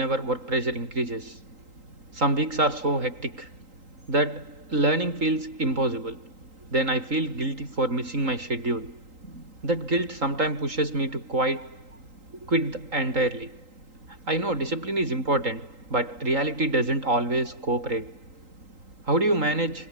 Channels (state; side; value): late; left; 3.8 ms